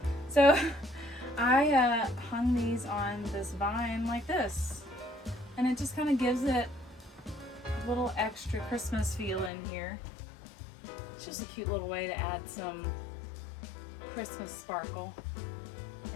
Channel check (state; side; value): drops out; right; at 9.5 s